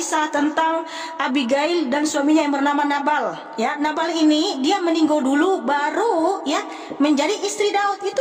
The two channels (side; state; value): both; identical; correlation 1.00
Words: tentang Abigail dan suaminya yang bernama Nabal. Ya, Nabal ini dia meninggal dulu baru ya menjadi istri Daud. Itu